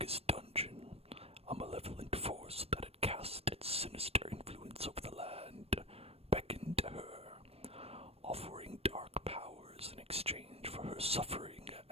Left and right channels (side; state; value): left; late; 0.29 ms